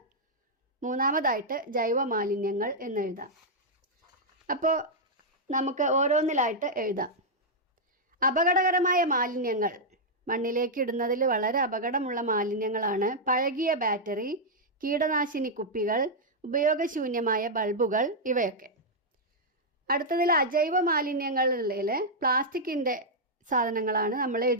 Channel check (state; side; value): normal; both; correlation -0.05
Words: 3ാമതായിട്ട് ജൈവ മാലിന്യങ്ങൾ എന്നെഴുതാം. അപ്പോൾ നമുക്ക് ഓരോന്നിലായിട്ട് എഴുതാം. അപകടകരമായ മാലിന്യങ്ങൾ മണ്ണിലേക്ക് ഇടുന്നതിൽ വളരെ അപകടമുള്ള മാലിന്യങ്ങളാണ് പഴകിയ ബാറ്ററി, കീടനാശിനി കുപ്പികൾ, ഉപയോഗശൂന്യമായ ബൾബുകൾ, ഇവയൊക്കെ. അടുത്തതിൽ അജൈവ മാലിന്യങ്ങളിൽ പ്ലാസ്റ്റിക്കിൻ്റെ സാധനങ്ങളാണ് നമ്മൾ